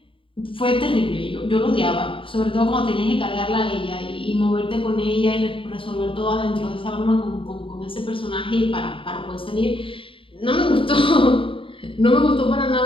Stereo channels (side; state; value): right; late; 0.25 ms